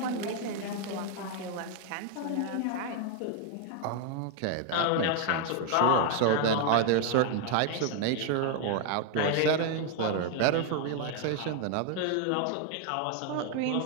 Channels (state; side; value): different; both; correlation 0.00